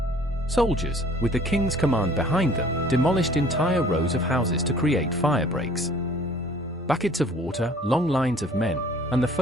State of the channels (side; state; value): both; normal; correlation 0.53